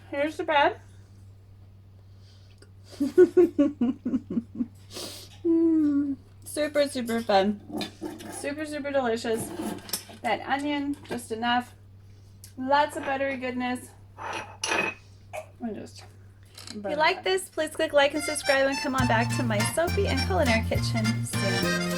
Here's the bread. Super, super fun. Super, super delicious. That onion, just enough. Lots of buttery goodness. If you like this, please click like and subscribe and come on back to my soapy and culinary kitchen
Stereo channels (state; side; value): identical; both; correlation 1.00